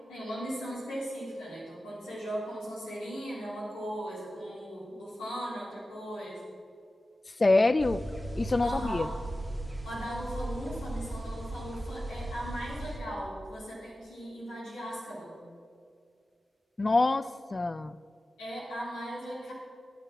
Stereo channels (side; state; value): both; normal; correlation 0.95